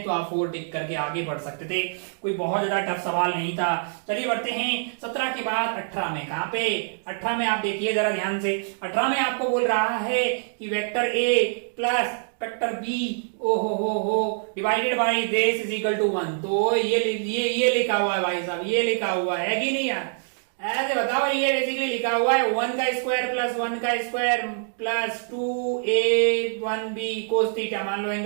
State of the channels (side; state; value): left; silent; digital silence